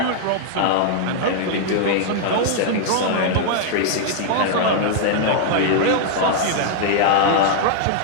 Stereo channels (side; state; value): both; different; correlation -0.01